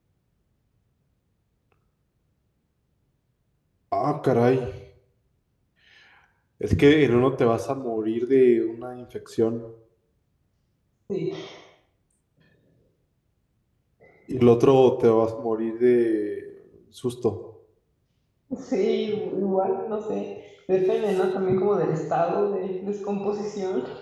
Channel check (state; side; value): identical; both; correlation 1.00